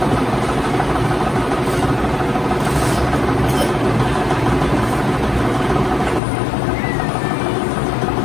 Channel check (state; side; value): drops out; right; at 6.2 s